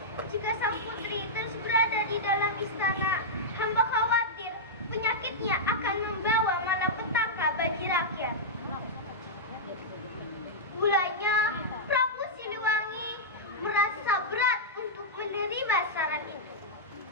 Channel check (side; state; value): both; normal; correlation -0.09